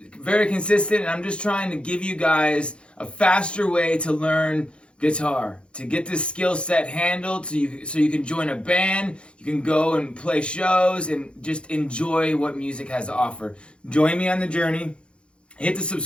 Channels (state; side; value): late; right; 0.057 ms